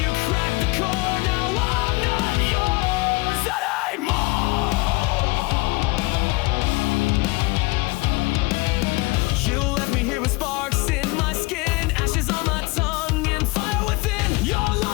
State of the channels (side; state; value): right; quieter; 24.0 dB